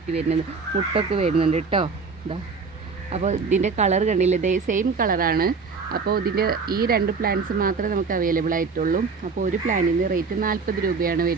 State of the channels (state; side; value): quieter; left; 4.8 dB